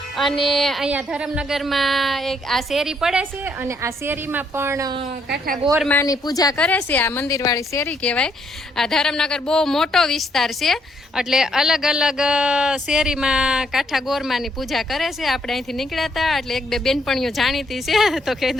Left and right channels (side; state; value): both; normal; correlation 0.72